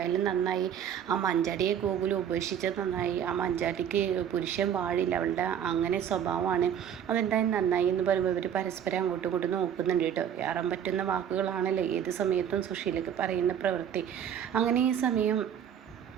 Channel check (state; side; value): quieter; left; 9.0 dB